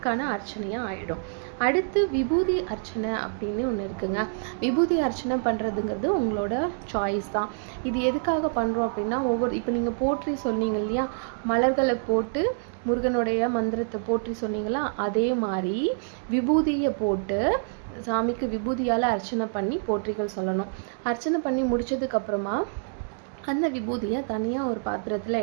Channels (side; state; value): left; silent; digital silence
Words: அர்ச்சனையாக ஆகிடும். அடுத்து விபூதி அர்ச்சனை அப்படின்னு ஒன்று இருக்குங்க. விபூதி அர்ச்சனை பண்ணுறதுங்கிறது உங்களோட சாய்ஸ் தான். இது எதுக்காக பண்ணுறோம் அப்படின்னா, இப்போ நீங்கள் போற்றி சொன்னீங்க இல்லையா, மலர்களை போட்டு முருகனுடைய மந்திரத்தை போற்றி சொன்னீங்களா, அதே மாதிரி விபூதியை போட்டு சாமிக்கு விபூதியால் அர்ச்சனை பண்ணி போற்றிகள் சொல்லணும். அர்ச்சனை பண்ணி முடித்ததுக்கப்புறமா அந்த விபூதியை தனியாக ஒரு பாத்திரத்தில்